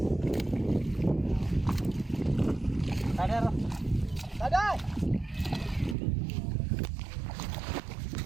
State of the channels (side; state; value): left; drops out; at 6.0 s